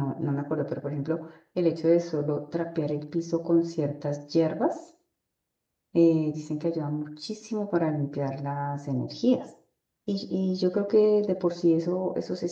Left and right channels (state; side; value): identical; both; correlation 1.00